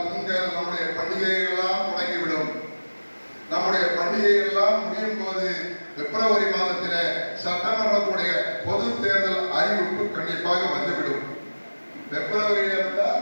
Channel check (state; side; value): inverted; both; correlation -1.00